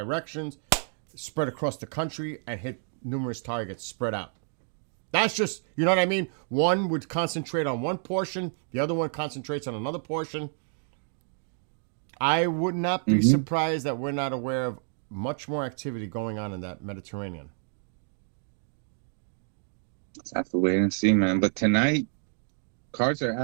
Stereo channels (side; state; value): left; silent; 59 dB below the other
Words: spread across the country and hit numerous targets spread out. That's just, you know what I mean? One would concentrate on one portion, the other one concentrates on another portion. I would not be surprised that we're not aware of much more activity going on in that Mediterranean. Let's have to wait and see, man. But tonight, cards are